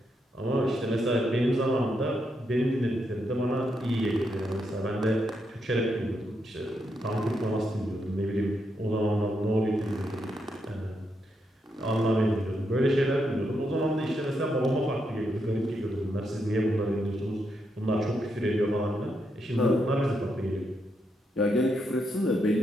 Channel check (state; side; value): normal; both; correlation 0.81